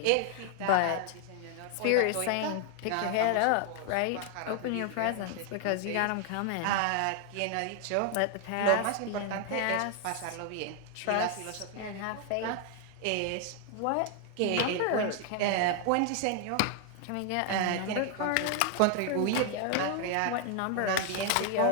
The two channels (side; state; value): both; different; correlation 0.00